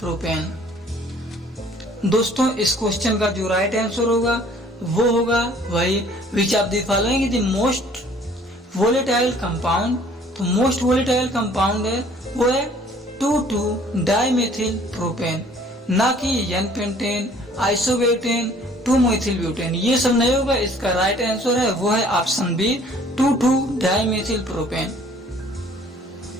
दोस्तों इस क्वेश्चन का जो राइट आंसर होगा वो होगा वही विच of the following is the most volatile compound. तो मोस्ट वोलेटाइल कंपाउंड है वो है 2,2-डाइमेथिल प्रोपेन, ना कि N-पेंटेन, आइसोब्यूटेन, 2-मेथिल ब्यूटेन, ये सब नहीं होगा। इसका राइट आंसर है वो है option B two two dimethyl propane.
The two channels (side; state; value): both; normal; correlation 0.55